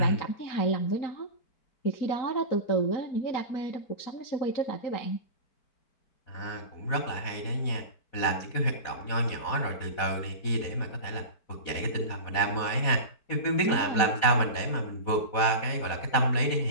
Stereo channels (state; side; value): late; right; 4.2 ms